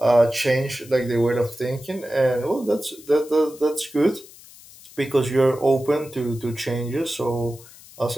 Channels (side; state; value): left; noise; hiss, 21 dB below the sound